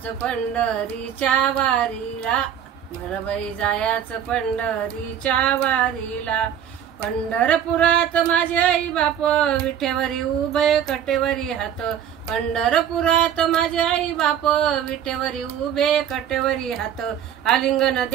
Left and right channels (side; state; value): left; quieter; 9.2 dB